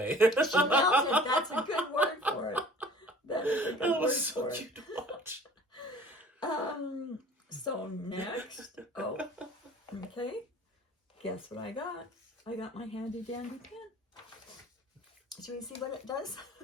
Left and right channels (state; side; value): normal; both; correlation 0.48